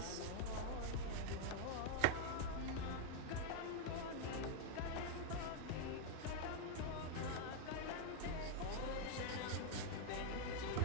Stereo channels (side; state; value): both; different; correlation 0.00